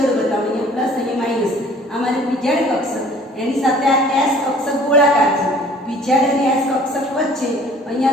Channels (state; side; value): normal; both; correlation 0.52